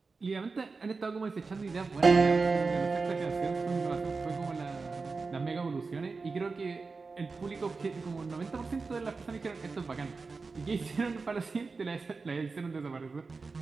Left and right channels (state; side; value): quieter; left; 4.3 dB